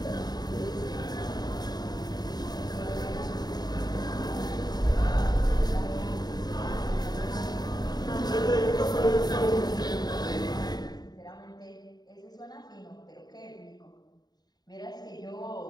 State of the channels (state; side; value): late; right; 0.20 ms